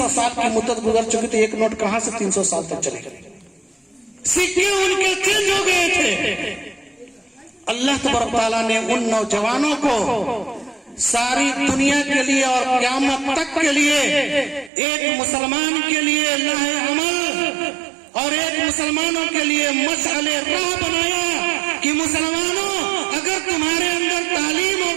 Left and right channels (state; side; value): drops out; left; at 14.7 s